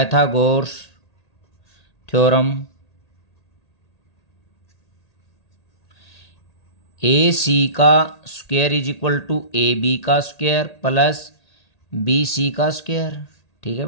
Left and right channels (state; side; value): late; right; 1.8 ms